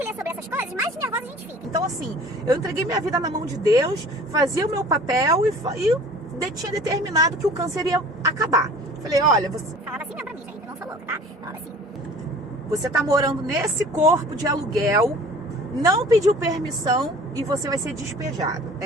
lê sobre essas coisas, mais nervosa a gente fica. Então, assim, eu entreguei minha vida na mão de Deus, fazia o meu papel e tinha determinado que o câncer ia acabar. Falei, olha, você... Falava assim mesmo pra mim, gente, eu não sou louca, tá? Falava assim. Você tá morando nesse corpo de aluguel, não pediu permissão e você vai ser despejado.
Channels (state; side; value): normal; both; correlation 0.46